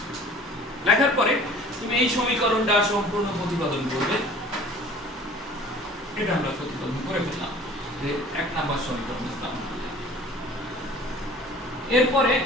লেখার পরে তুমি এই সমীকরণটা সম্পূর্ণ প্রতিপাদন করবে। এটা আমরা প্রতিপাদন করে ফেললাম, যে 1 নম্বর সমীকরণ লিখলাম। এরপরে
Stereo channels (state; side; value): normal; both; correlation 0.48